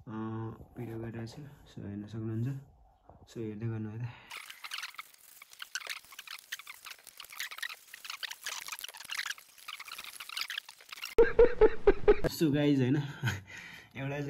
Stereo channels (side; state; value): both; identical; correlation 1.00